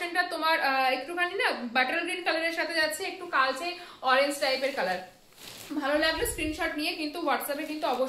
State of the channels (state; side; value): identical; both; correlation 1.00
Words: তোমার একটুখানি না বাটার গ্রিন কালারের সাথে যাচ্ছে, একটু কালচে অরেঞ্জ টাইপের কালার। ভালো লাগলে স্ক্রিনশট নিয়ে কিন্তু হোয়াটসঅ্যাপে কিন্তু